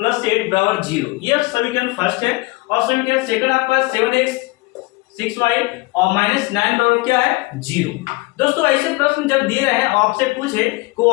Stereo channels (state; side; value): quieter; right; 23.1 dB